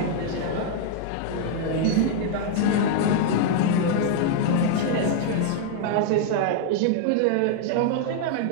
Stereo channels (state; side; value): different; both; correlation 0.00